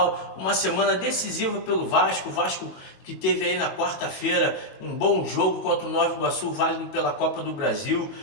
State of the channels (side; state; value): right; late; 22 ms